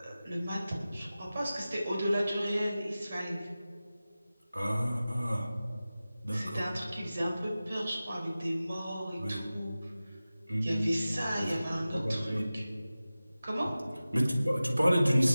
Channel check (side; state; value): both; inverted; correlation -0.96